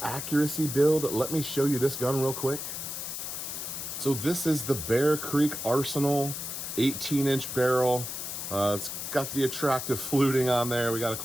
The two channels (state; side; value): noise; left; hiss, 6 dB below the sound